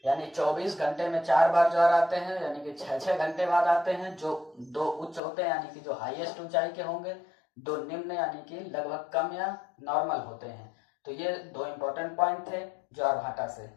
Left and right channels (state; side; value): drops out; right; at 5.2 s